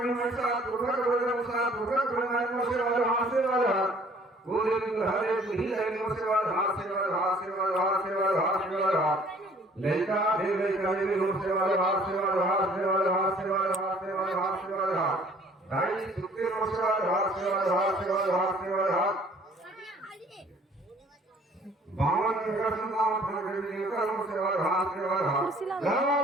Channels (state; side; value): normal; both; correlation 0.56